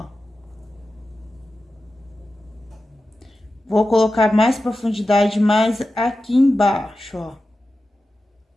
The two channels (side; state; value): both; normal; correlation 0.93